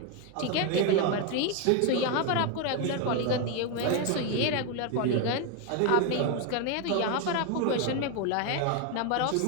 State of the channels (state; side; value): different; both; correlation 0.01